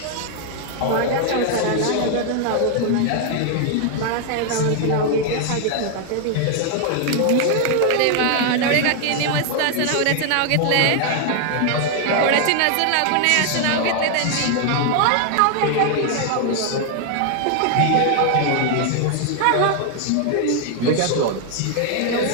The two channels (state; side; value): different; both; correlation 0.00